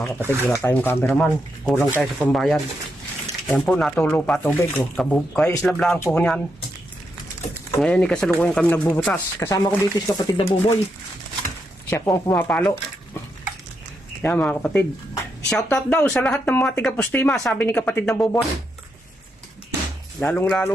kapatid. Wala tayong cameraman. Kulang tayo sa pambayad. Ayan po, natulo pa tubig. Kaya slab lang po niyan. Ngayon kasalukuyan kami nagbubutas. Kasama ko dito si kapatid na Buboy. Siya po ang pumapalo. Yan mga kapatid. Shoutout daw sa lahat ng mga tiga-Pustima, sabi ni kapatid na Buboy.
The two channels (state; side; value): normal; both; correlation 0.82